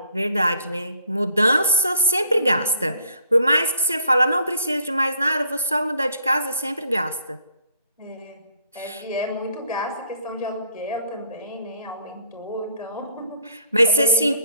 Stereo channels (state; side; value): inverted; both; correlation -0.65